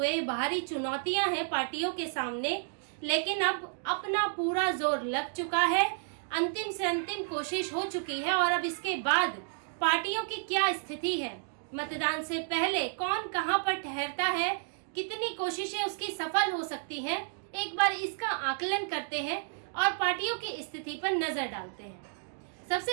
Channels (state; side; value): silent; left; digital silence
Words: बाहरी चुनौतियां हैं पार्टियों के सामने, लेकिन अब अपना पूरा जोर लग चुका है। अंतिम से अंतिम कोशिश हो चुकी है और अब इसके बाद पार्टियों की क्या स्थिति है, मतदान से पहले कौन कहां पर ठहरता है, कितनी कोशिशें उसकी सफल हो सकती हैं, एक बार इसका आकलन करते हैं और पार्टियों की स्थिति पर नजर डालते हैं।